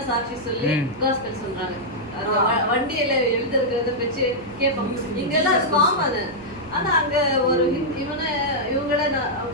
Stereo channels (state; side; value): noise; right; hum, 19 dB below the sound